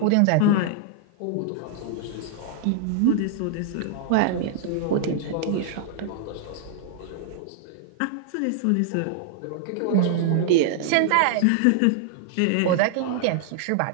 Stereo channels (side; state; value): both; different; correlation -0.01